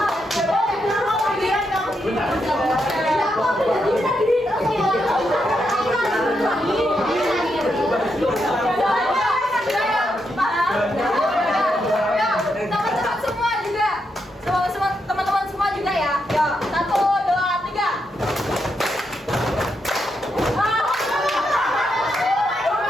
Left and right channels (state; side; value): normal; both; correlation 0.82